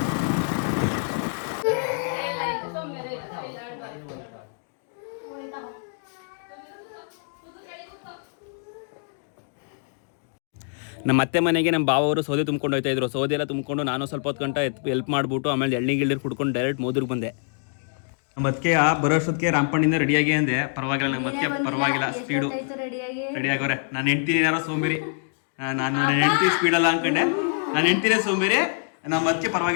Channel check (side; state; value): right; silent; digital silence